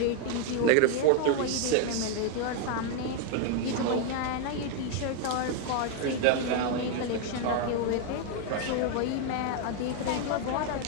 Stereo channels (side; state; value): both; different; correlation 0.01